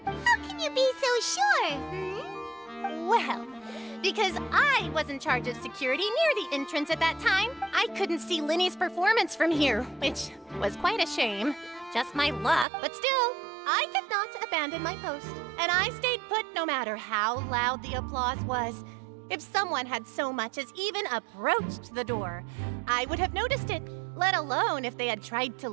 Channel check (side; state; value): left; drops out; at 12.7 s